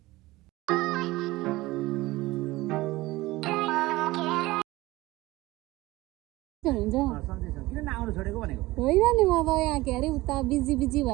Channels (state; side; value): quieter; left; 19.3 dB